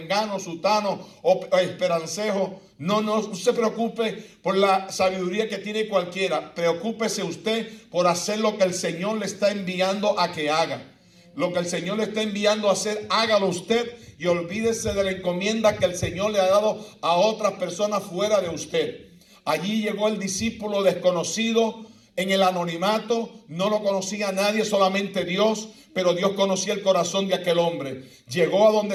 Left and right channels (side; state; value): both; identical; correlation 1.00